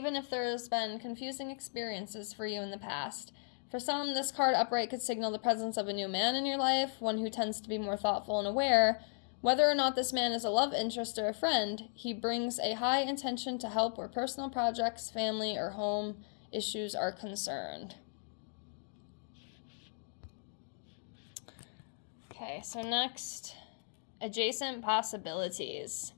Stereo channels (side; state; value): right; silent; digital silence